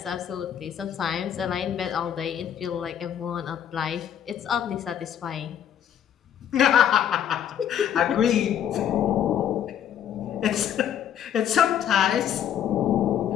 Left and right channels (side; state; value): right; quieter; 9.6 dB